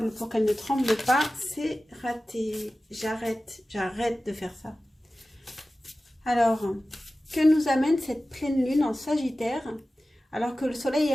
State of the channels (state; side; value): normal; both; correlation 0.96